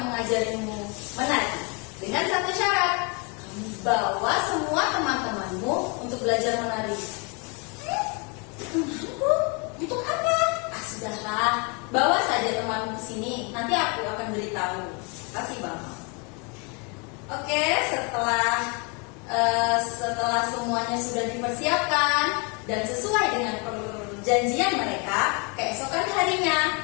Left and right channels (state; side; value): quieter; right; 32.7 dB